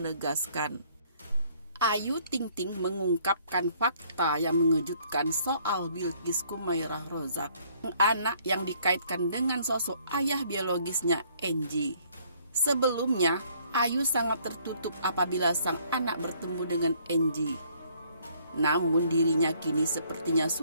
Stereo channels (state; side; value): inverted; both; correlation -0.63